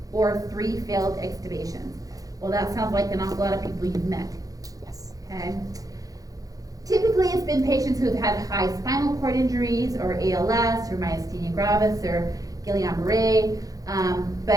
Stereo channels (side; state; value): left; late; 0.17 ms